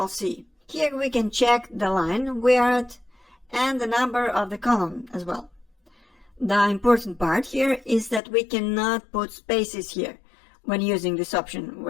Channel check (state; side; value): drops out; right; at 8.2 s